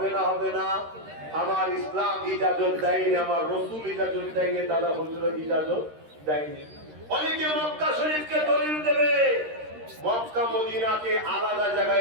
না? হবে না? আমার ইসলাম ইজাজত দেয়নি, আমার রাসূল ইজাজত দেয়নি, দাদা হুজুর ইজাজত দেয়নি। অনেকে মক্কা শরীফকে দলিল দেবে, মক্কা মদিনাকে আলাদা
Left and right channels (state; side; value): late; left; 13 ms